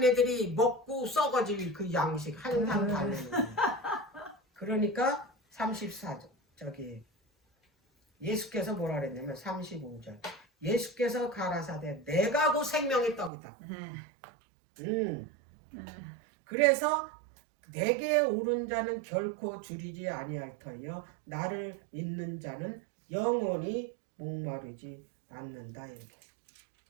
먹고 썩어질 그 양식 항상 달래는 거야. 그러니까 34절 저기 예수께서 뭐라 그랬냐면 35절 예수께서 가라사대 내가 곧 생명의 떡이다. 그래서 내게 오른 자는 결코 줄이지 아니할 터이요 나를 믿는 자는 영원히 목마르지 않는다. 이렇게.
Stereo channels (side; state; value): left; drops out; at 13.3 s